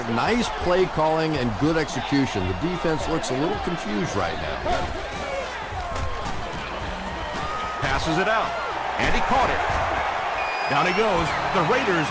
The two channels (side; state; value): both; identical; correlation 1.00